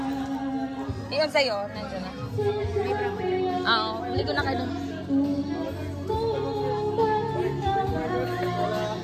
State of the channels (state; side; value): identical; both; correlation 1.00